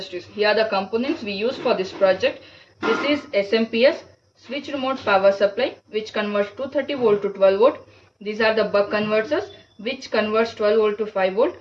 Here are the components we use for this project. This is SMPS, switch remote power supply, which converts 230 volt to 12 volt. These are the buck converters, which converts 12 volt to 5 volt.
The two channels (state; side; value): identical; both; correlation 1.00